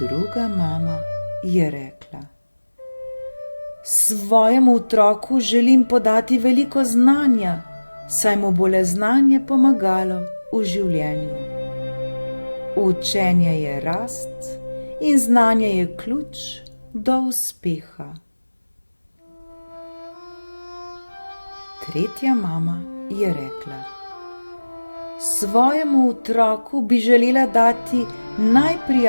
mama je rekla: svojemu otroku želim podati veliko znanja, saj mu bo le znanje pomagalo v življenju. Učenje je rast in znanje je ključ do uspeha. Tretja mama je rekla: svojemu otroku bi želela dati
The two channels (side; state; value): both; inverted; correlation -1.00